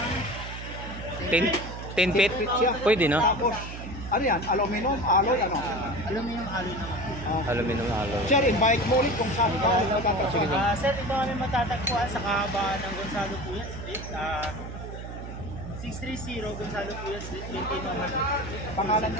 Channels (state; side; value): noise; right; hum, 9 dB below the sound